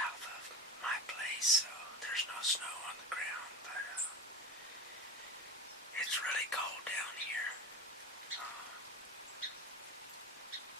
of my place, so there's no snow on the ground, but it's really cold down here.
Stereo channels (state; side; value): normal; both; correlation 0.26